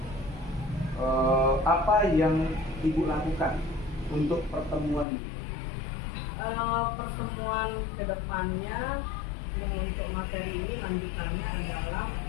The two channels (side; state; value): right; drops out; at 5.1 s